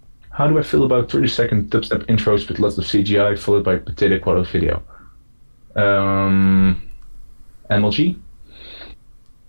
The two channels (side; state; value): both; inverted; correlation -1.00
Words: How do I feel about 30-second dubstep intros with lots of CGI followed by potato quality video? MLG?